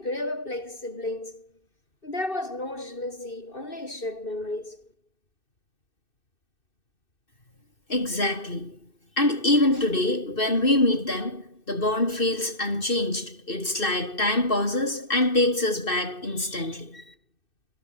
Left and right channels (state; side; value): late; right; 2.6 ms